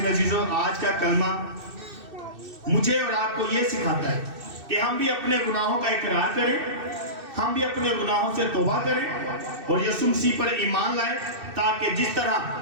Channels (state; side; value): late; left; 2.6 ms